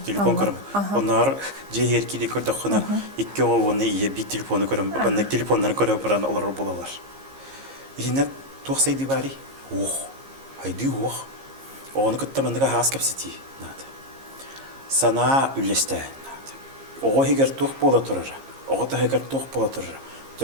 Телефон көрөм. Онар жеер киде көрдөккөнө икки оны ие би телефону көрөм. Баннык телефоннарын көрөп баран олор болалар. Инет туаксайды бари. Ох. Айди ох. Оны кытта мандыга хас кепсети. Нат. Сана үлесте. Нат. Ого хигер тук бола турар. Ого та хигер тук бола турар.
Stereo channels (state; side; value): late; left; 15 ms